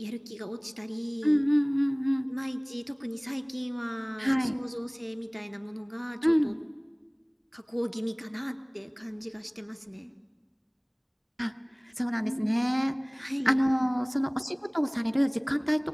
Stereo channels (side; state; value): both; identical; correlation 1.00